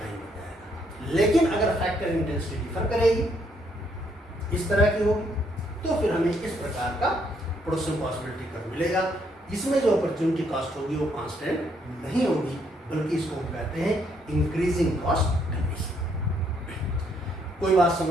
हो जाएगा। लेकिन अगर फैक्टर इंटेंसिटी डिफर करेगी, इस तरह की होगी, तो फिर हमें इस प्रकार का प्रोडक्शन पॉसिबिलिटी कर मिलेगा। इसमें जो अपॉर्चुनिटी कॉस्ट होगी वो कांस्टेंट नहीं होगी, बल्कि इसको हम कहते हैं इंक्रीजिंग कॉस्ट कंडीशन। कोई बात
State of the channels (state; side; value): normal; both; correlation 0.72